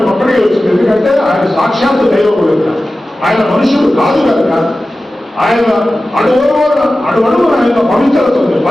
ఒక్కడికి వచ్చింది. ఎందుకంటే ఆయన సాక్షాత్తు దైవం కనుక, ఆయన మనుషుడు కాదు కనుక ఆయన అడుగడుగున ఆయన పవిత్రత ఉంది,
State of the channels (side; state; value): both; normal; correlation 0.95